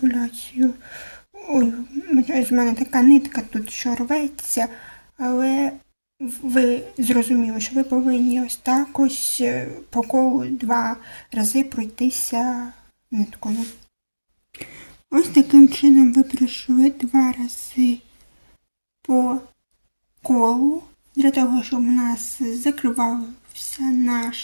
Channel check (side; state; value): both; inverted; correlation -1.00